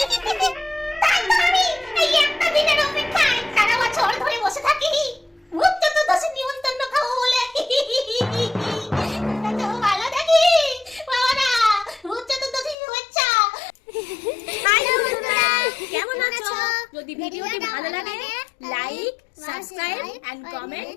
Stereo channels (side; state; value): right; drops out; at 12.8 s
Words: তাই তো আমি এই একটা দিনের অপেক্ষায় সারা বছর ধরে বসে থাকি ভূত চতুর্দশী নিমন্ত্রণ খাবো বলে। তো ভালো থাকি বাবারা, ভূত চতুর্দশী শুভেচ্ছা। হাই বন্ধুরা, কেমন আছো? যদি ভিডিওটি ভালো লাগে লাইক, সাবস্ক্রাইব এন্ড